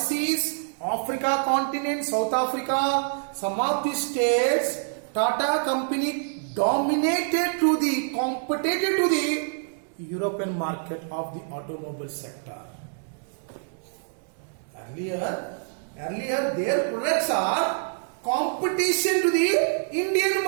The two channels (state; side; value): silent; left; digital silence